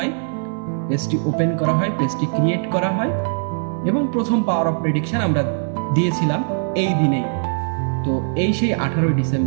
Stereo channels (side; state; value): left; silent; digital silence